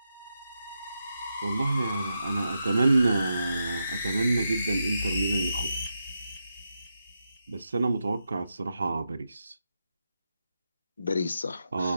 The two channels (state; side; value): inverted; both; correlation -0.86